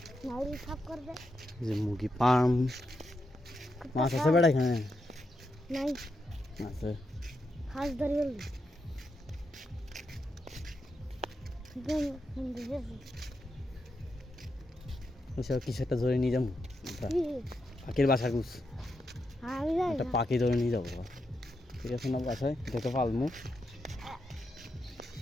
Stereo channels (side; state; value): both; normal; correlation 0.84